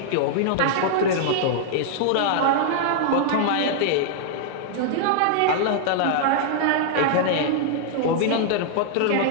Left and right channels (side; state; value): both; different; correlation -0.01